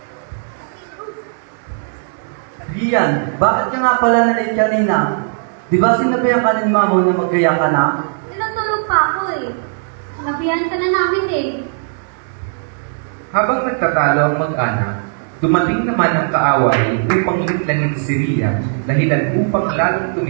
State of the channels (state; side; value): silent; left; digital silence